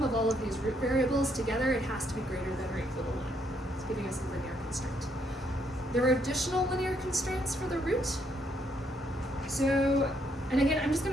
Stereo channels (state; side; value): normal; both; correlation 0.72